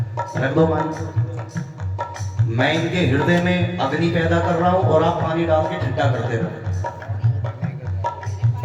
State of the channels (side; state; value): both; identical; correlation 1.00